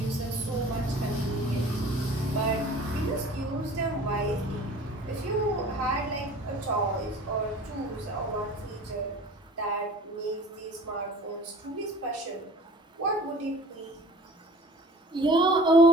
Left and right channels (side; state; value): both; normal; correlation 0.45